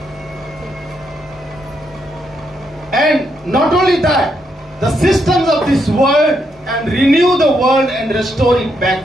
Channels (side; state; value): both; normal; correlation 0.78